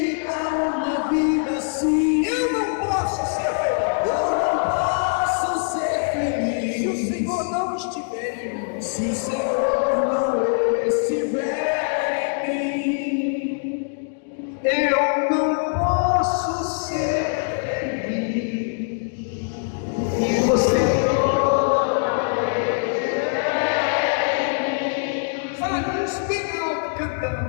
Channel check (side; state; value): right; silent; 63 dB below the other